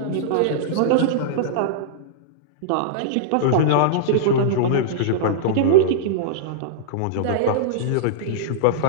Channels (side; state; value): both; different; correlation -0.02